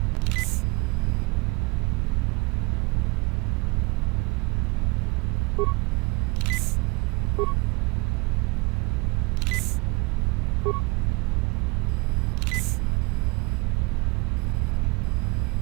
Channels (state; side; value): quieter; left; 26.5 dB